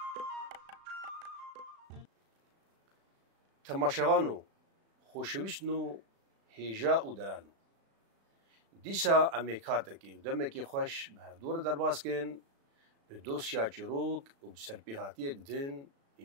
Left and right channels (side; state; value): left; late; 36 ms